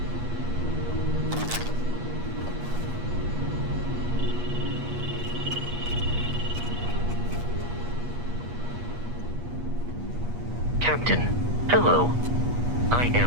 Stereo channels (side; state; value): left; late; 8.4 ms